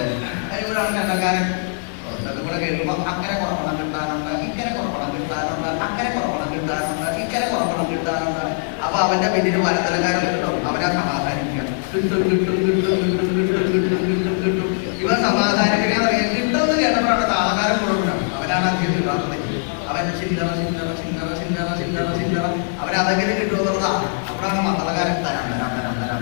അതിവിടാണ് ചെണ്ടക്കാരൻ. കൂടെ കേൾക്കുമ്പോ അക്കരെ കുറപ്പണം കിട്ടാനുണ്ട്, ഇക്കരെ കുറപ്പണം കിട്ടാനുണ്ട്, അക്കരെ കുറപ്പണം കിട്ടാനുണ്ട്, ഇക്കരെ കുറപ്പണം കിട്ടാനുണ്ട്. അപ്പൊ അവന്റെ പിന്നിൽ മരത്തലക്കാരൻ കിട്ടും. അവനെ സമാധാനിപ്പിക്കണം. കിട്ടും കിട്ടും കിട്ടും കിട്ടും കിട്ടും കിട്ടും കിട്ടും കിട്ടും. ഇവൻ സമാധാനിപ്പിക്കാതെ കിട്ടുമെന്ന് കേട്ടപ്പോഴാണ് താളക്കാരൻ കൊടുക്കണം. അവനാണ് അധികം കിട്ടാത്തത്. അവൻ ചില്ലറ ചില്ലറ ചില്ലറ ചില്ലറ ചില്ലറ ചില്ലറ അവനതെങ്കിലും കിട്ടുമെന്നുള്ളതാ. അപ്പോഴാണ് മത്തളക്കാരൻ തരാം തരാം തരാം തരാം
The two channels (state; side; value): silent; right; 65 dB below the other